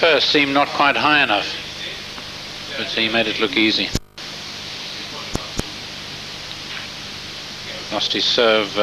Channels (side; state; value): both; identical; correlation 1.00